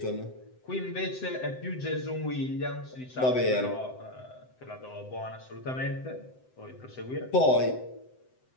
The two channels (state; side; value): late; right; 7.8 ms